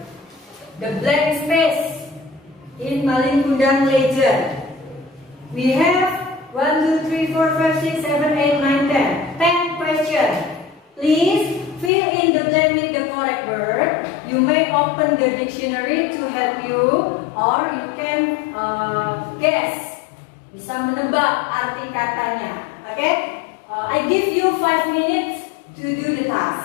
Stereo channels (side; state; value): right; drops out; at 11.9 s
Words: The blank space in Maling Kundang legend. We have 1, 2, 3, 4, 5, 6, 7, 8, 9, 10. 10 questions. Please fill in the blank with the correct word. You may open the dictionary to help you, or you can guess. Bisa menebak arti katanya. Okay? I give you 5 minutes to do the